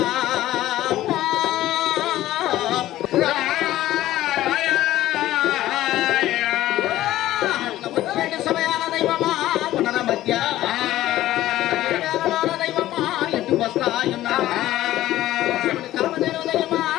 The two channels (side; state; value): right; quieter; 14.6 dB